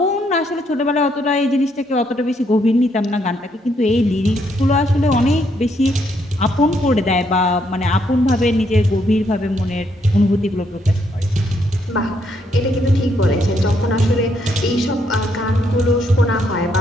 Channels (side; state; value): both; normal; correlation 0.74